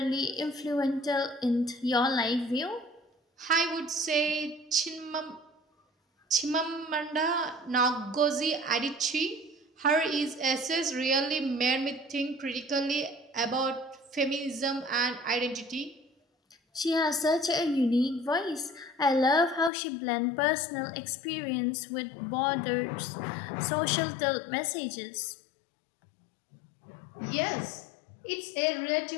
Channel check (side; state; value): right; drops out; at 19.7 s